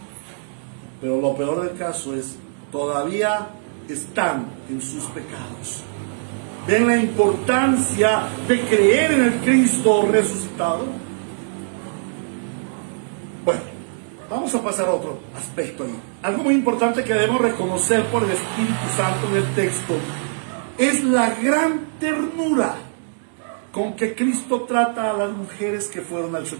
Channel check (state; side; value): silent; left; digital silence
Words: Pero lo peor del caso es, todavía están en sus pecados. ¿Ven la importancia de creer en el Cristo resucitado? Bueno, vamos a pasar a otro aspecto ahí. Algo muy importante que debemos reconocer por el Espíritu Santo en el texto es la gran ternura con que Cristo trata a las mujeres que fueron al